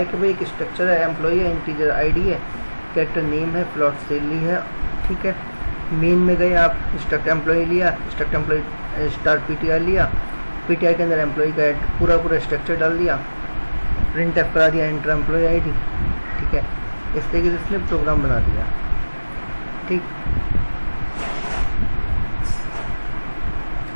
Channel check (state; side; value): inverted; both; correlation -1.00